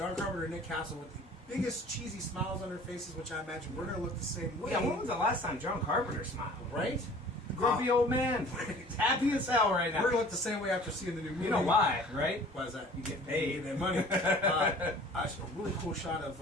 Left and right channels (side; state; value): both; normal; correlation 0.48